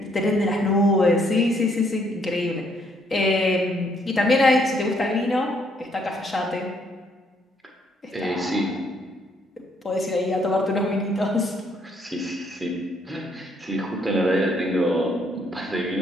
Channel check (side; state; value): both; normal; correlation 0.69